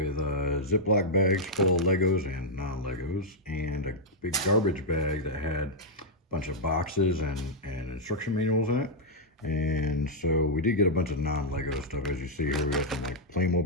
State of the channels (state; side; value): normal; both; correlation -0.05